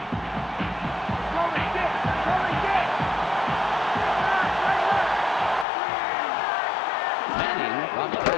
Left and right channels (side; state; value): right; drops out; at 5.7 s